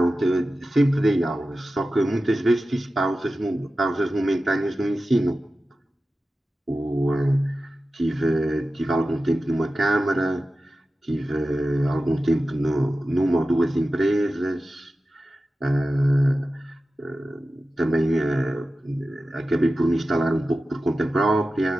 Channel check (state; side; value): normal; both; correlation 0.94